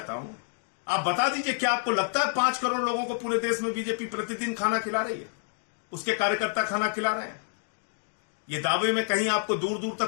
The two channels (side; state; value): right; silent; 59 dB below the other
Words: हूं, आप बता दीजिए, क्या आपको लगता है 5 करोड़ लोगों को पूरे देश में बीजेपी प्रतिदिन खाना खिला रही है? उसके कार्यकर्ता खाना खिला रहे हैं? ये दावे में कहीं आपको दूर दूर